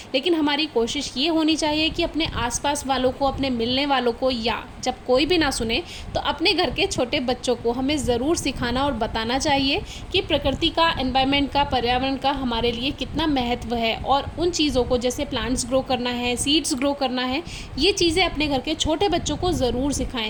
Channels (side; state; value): both; identical; correlation 1.00